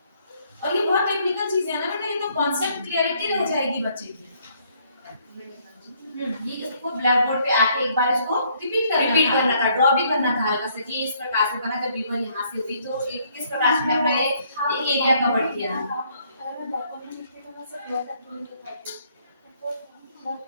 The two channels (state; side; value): inverted; both; correlation -0.66